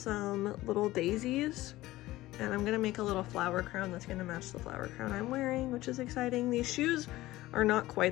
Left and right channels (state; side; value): quieter; right; 17.1 dB